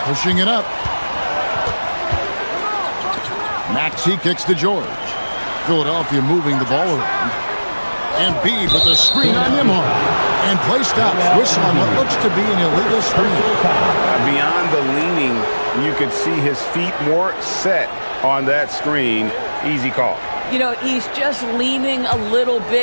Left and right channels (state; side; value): inverted; both; correlation -1.00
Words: Pushing it up. Maxey kicks to George. Philadelphia moving the ball around. Embiid with a screen on Nembhard. And play stops. Whistle on what looks to be an illegal screen. Beyond the leaning, you could see his feet more set on that screen. Easy call. You know, he's just leaning a little